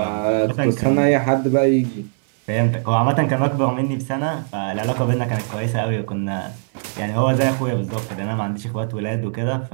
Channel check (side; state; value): left; silent; digital silence